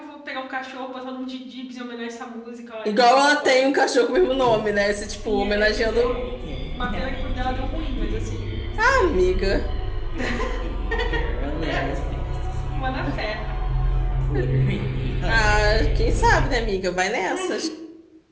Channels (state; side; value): identical; both; correlation 1.00